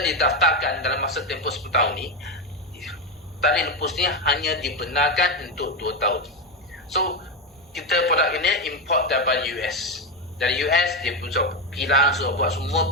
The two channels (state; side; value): normal; both; correlation 0.10